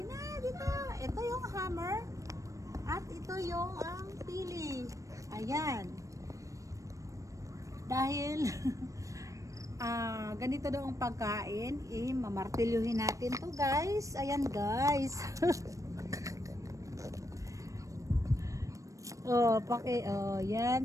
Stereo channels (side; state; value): left; late; 0.16 ms